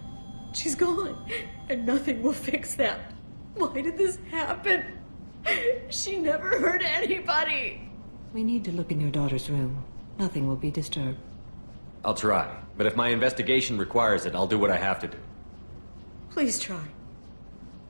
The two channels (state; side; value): inverted; both; correlation -1.00